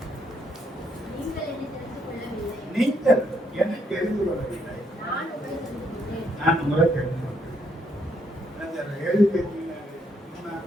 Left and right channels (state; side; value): normal; both; correlation 0.73